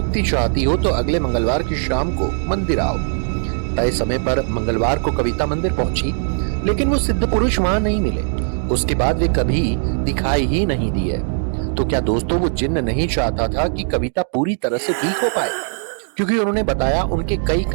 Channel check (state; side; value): silent; left; digital silence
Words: चाहती हो तो अगले मंगलवार की शाम को मंदिर आओ। तय समय पर मंगलवार को कविता मंदिर पहुंची, लेकिन वो सिद्ध पुरुष वहां नहीं मिले। उसके बाद वे कभी दिखाई ही नहीं दिए। तो क्या दोस्तों, वो जिन्न नहीं चाहता था कि कविता पूरी तरह से ठीक हो पाए? क्योंकि उन्होंने बताया, उनके कई